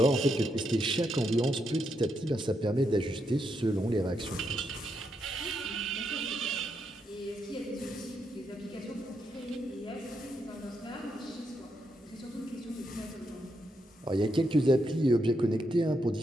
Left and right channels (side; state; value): both; normal; correlation 0.81